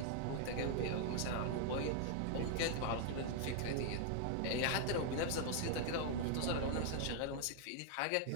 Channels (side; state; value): both; different; correlation 0.00